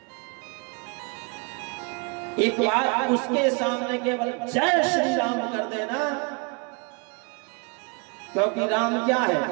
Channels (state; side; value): quieter; left; 32.4 dB